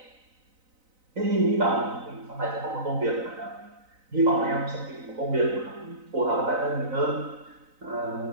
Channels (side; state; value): left; late; 4.0 ms